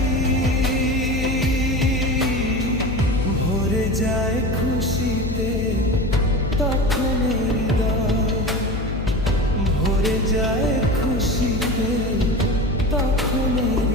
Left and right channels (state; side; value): noise; left; hum, 4 dB below the sound